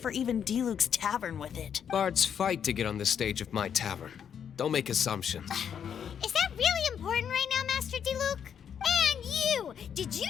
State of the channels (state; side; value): quieter; right; 8.1 dB